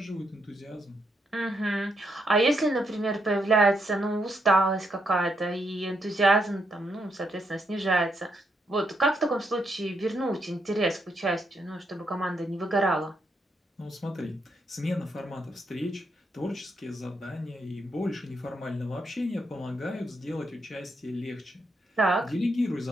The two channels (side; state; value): both; normal; correlation 0.78